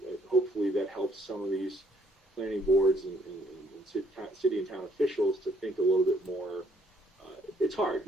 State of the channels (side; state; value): both; normal; correlation 0.66